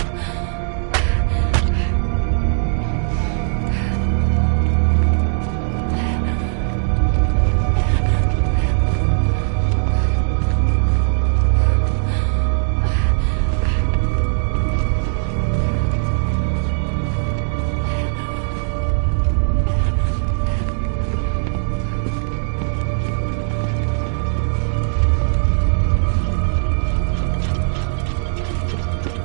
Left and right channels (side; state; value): left; silent; 67 dB below the other